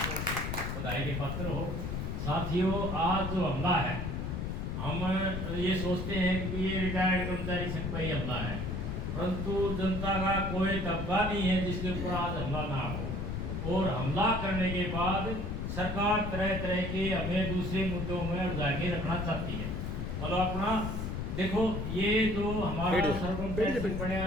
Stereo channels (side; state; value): left; noise; rumble, 3 dB below the sound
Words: बधाई के पात्र हो। साथियों, आज जो हमला है, हम ये सोचते हैं कि ये रिटायर्ड कर्मचारी संघ पर ही हमला है, परंतु जनता का कोई तबका नहीं है जिसके ऊपर आज हमला ना हो। और हमला करने के बाद सरकार तरह तरह के हमें दूसरे मुद्दों में उलझा के रखना चाहती है। मतलब अपना देखो, ये जो हमारा सरपंच संघ